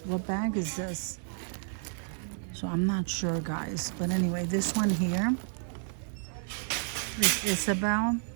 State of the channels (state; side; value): silent; left; digital silence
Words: bag is this? So I'm not sure, guys. But anyway, this one here is Isabel,